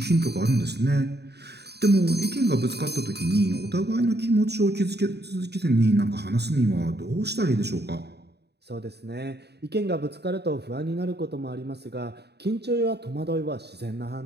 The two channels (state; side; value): late; left; 0.48 ms